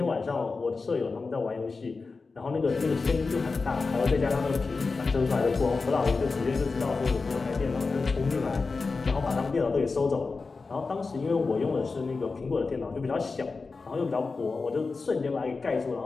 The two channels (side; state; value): right; quieter; 4.2 dB